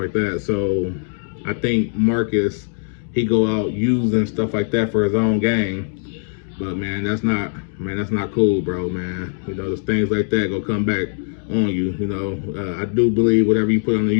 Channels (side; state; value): right; silent; 60 dB below the other